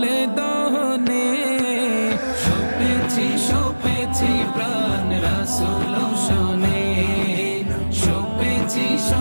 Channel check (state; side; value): inverted; both; correlation -1.00